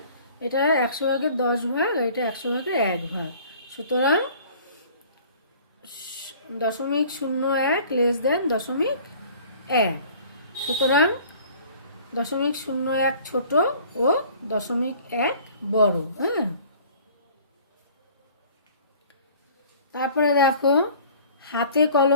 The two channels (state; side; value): inverted; both; correlation -0.49